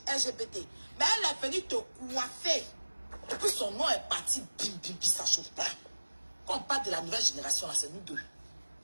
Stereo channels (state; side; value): inverted; both; correlation -1.00